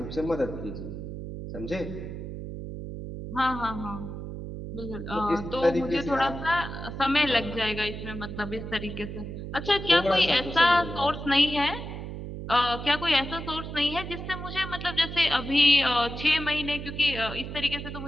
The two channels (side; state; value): right; noise; hum, 8 dB below the sound